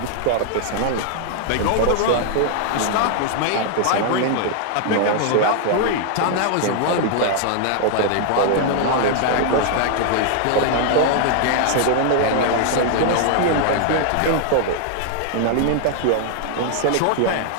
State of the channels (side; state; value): both; different; correlation 0.00